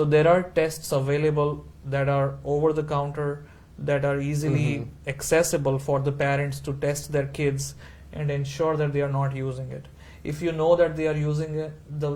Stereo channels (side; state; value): both; identical; correlation 1.00